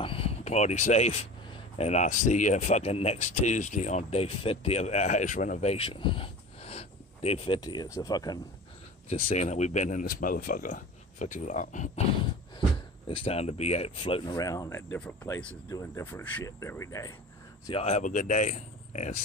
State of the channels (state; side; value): normal; both; correlation 0.36